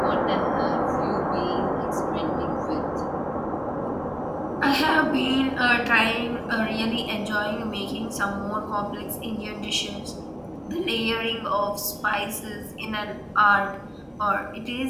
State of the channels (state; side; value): identical; both; correlation 1.00